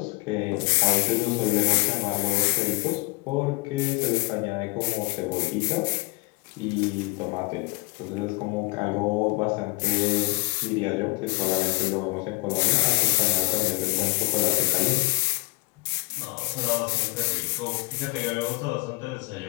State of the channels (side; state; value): right; quieter; 26.9 dB